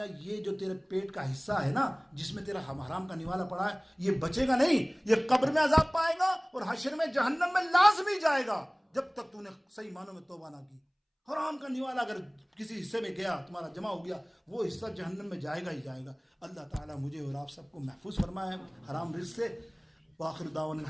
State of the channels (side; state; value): both; identical; correlation 1.00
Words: یہ جو تیرے پیٹ کا حصہ ہے نا جس میں تیرا حرام کا نوالا پڑا ہے, یہ بچے گا نہیں, یہ قبر میں عذاب پائے گا اور حشر میں جہنم میں لازمی جائے گا جب تک تو نے صحیح معنوں میں توبہ نہ کی. حرام کا نوالا اگر کسی حصے میں گیا, تمہارا جمع ہو گیا, وہ حصہ جہنم میں جائے گا ہی جائے گا. اللہ تعالیٰ مجھے اور آپ سب کو محفوظ فرمائے حرام رزق سے. وآخر دعوانا